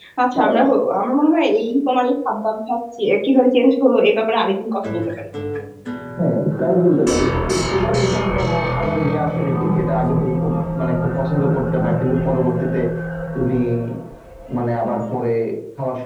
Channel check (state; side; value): identical; both; correlation 1.00